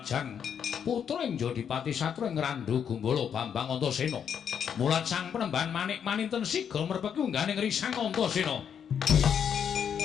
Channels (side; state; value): right; quieter; 8.0 dB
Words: putra ing Jodipati Satra ing Randu Gumbala Bambang Antasena mulat sang penemban manik maninten siga merpeki ungganing Risang Antasena.